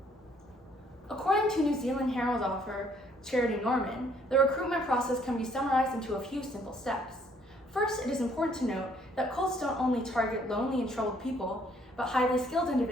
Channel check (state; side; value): normal; both; correlation 0.64